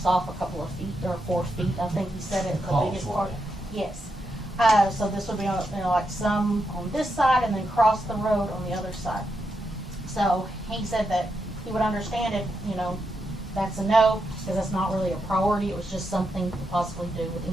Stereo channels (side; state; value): both; normal; correlation 0.84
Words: off a couple of feet or 4 feet. I think he said it. The biggest part. Yes. So this would be on, like some on this side and then cross the road on the other side. So he said that he would understand if, that's a no, because that's not really a priority. It was just something to possibly do with